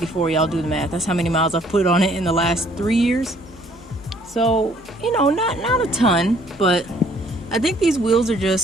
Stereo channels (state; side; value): normal; both; correlation 0.61